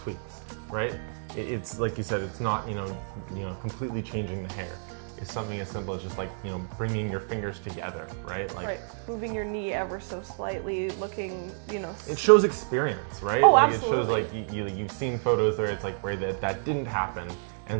right? It's like you said, it's not, you know, completely changing the hair. It's something as simple as just like, you know, bringing your fingers together, right? Like right. Moving your knee ever so slightly, looking, you know. It shows experience, right? Oh, like absolutely. It shows like you've seen photos where it's like where that didn't happen,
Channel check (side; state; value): left; silent; digital silence